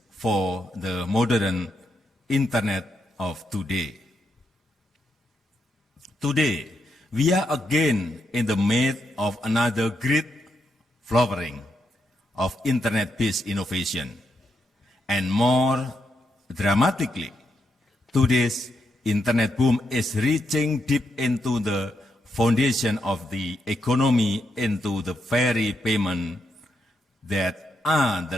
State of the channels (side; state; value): both; normal; correlation 0.81